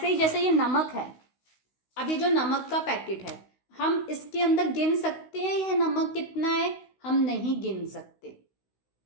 ही जैसे ये नमक है, अब ये जो नमक का पैकेट है, हम इसके अंदर गिन सकते हैं यह नमक कितना है? हम नहीं गिन सकते,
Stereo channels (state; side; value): late; right; 16 ms